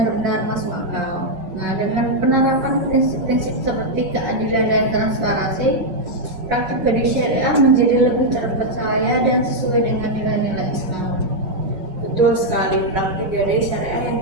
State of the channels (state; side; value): late; left; 5.4 ms